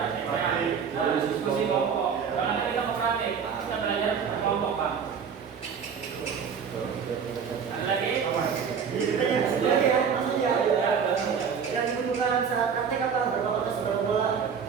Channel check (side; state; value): left; quieter; 6.7 dB